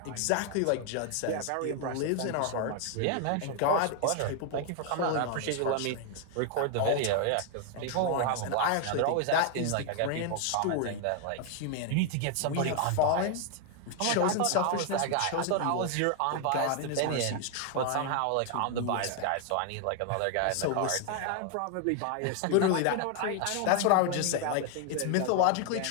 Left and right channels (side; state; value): both; different; correlation 0.00